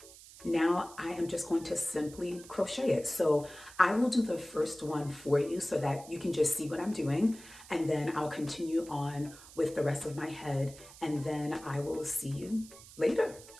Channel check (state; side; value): noise; right; hiss, 19 dB below the sound